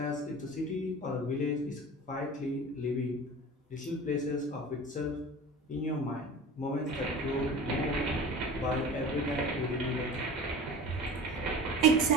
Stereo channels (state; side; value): normal; both; correlation 0.37